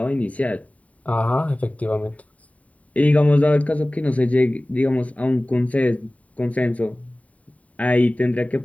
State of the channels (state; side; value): late; right; 0.068 ms